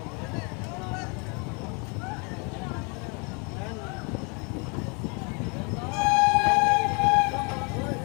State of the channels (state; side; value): quieter; right; 32.6 dB